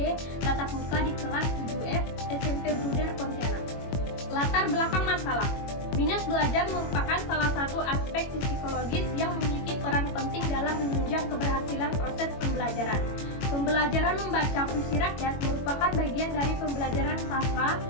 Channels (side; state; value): right; late; 21 ms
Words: tatap muka di kelas 7F SMP Bruder Pontianak. Latar belakang masalah. Minat belajar merupakan salah satu aspek psikologis yang memiliki peran penting dalam menunjang keberhasilan proses pembelajaran. Pembelajaran membaca puisi rakyat merupakan bagian dari pembelajaran sastra